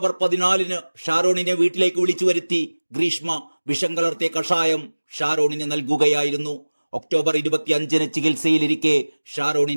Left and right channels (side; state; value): both; inverted; correlation -1.00